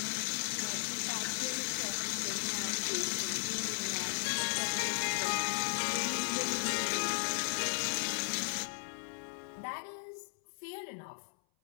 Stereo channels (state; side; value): silent; right; 54 dB below the other